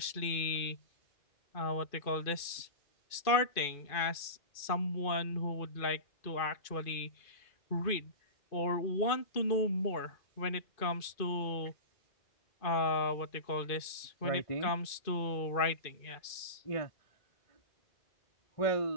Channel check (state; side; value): late; right; 2.5 ms